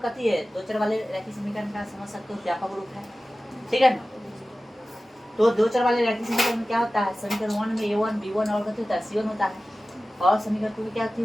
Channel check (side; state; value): both; normal; correlation 0.96